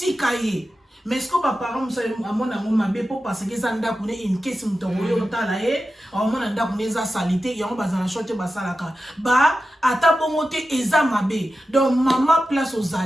ye mais ce que ba para musa amona ngoma be po parce que ça nda kune in case mutongo yo tala ye amona nda kune za salite yango bazana shote ba salaka ba ata bongo te eza mabe donc mama place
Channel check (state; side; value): normal; both; correlation 0.92